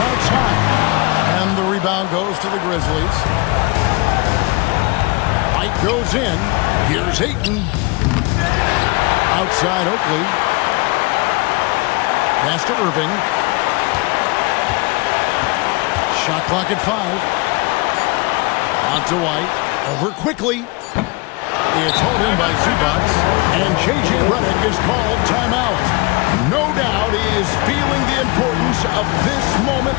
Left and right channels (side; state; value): right; quieter; 25.9 dB